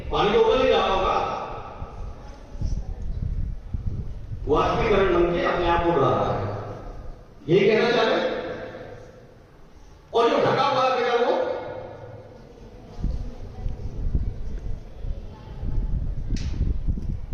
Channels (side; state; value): both; identical; correlation 1.00